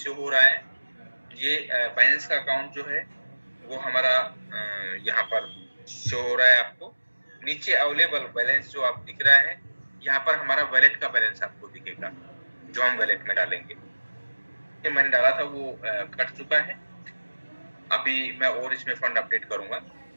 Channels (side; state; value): both; inverted; correlation -1.00